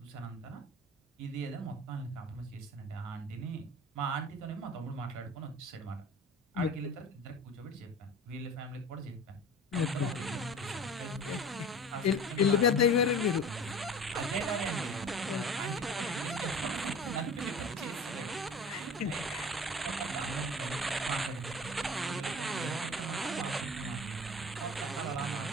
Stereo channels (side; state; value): both; normal; correlation 0.39